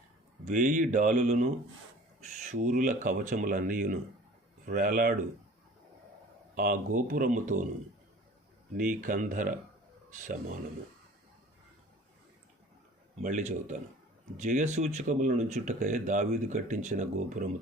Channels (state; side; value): normal; both; correlation 0.45